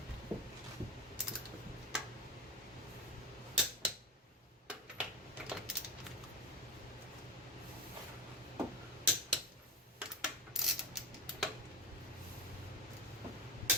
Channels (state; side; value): normal; both; correlation 0.21